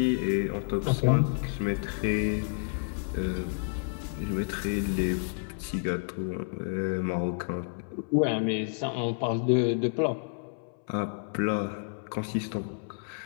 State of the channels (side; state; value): right; silent; 58 dB below the other